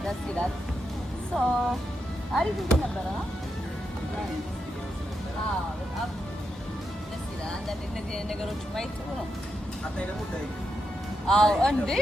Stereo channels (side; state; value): both; normal; correlation 0.84